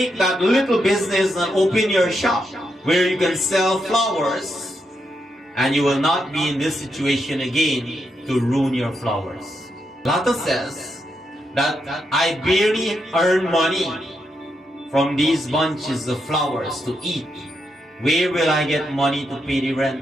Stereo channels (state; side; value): normal; both; correlation 0.82